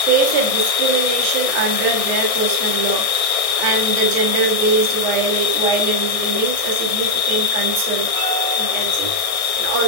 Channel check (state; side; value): late; right; 1.6 ms